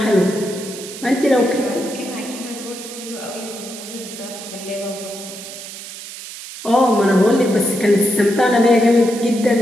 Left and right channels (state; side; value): noise; right; hiss, 12 dB below the sound